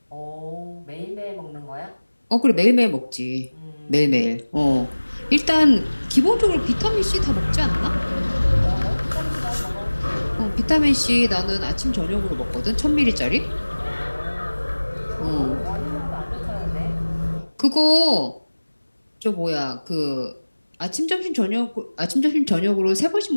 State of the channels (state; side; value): inverted; both; correlation -1.00